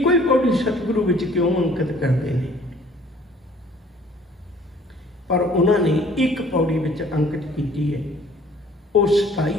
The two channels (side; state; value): both; normal; correlation 0.55